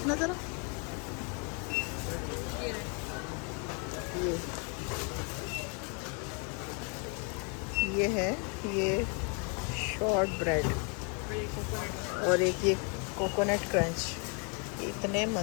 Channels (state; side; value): quieter; right; 36.7 dB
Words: ज़रा, ये है, ये शॉर्ट ब्रेड और एक ये कोकोनट क्रंच। इतने